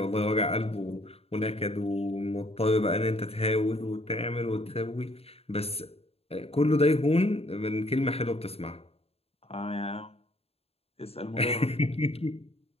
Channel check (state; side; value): late; right; 0.29 ms